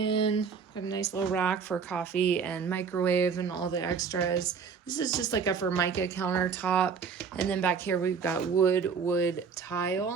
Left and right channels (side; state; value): left; quieter; 6.0 dB